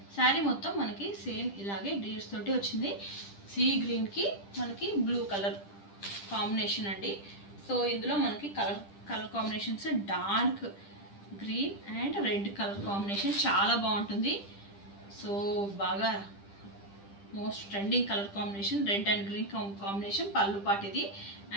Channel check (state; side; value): late; right; 10 ms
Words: శారీ మొత్తం మనకి సేమ్ ఇలాగే డీర్స్ తోటి వచ్చింది. సీ గ్రీన్కి మనకి బ్లూ కలర్ కాంబినేషన్ అండి. సో ఇందులో మనకి colour combinations dark green and red colour combination చాలా బాగుంటుంది. సో బాగా most trending colour combination red and green combination. పళ్ళు పార్ట్ ఇది.